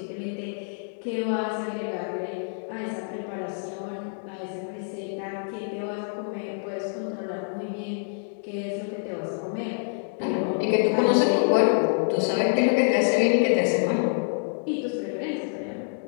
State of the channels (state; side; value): silent; right; digital silence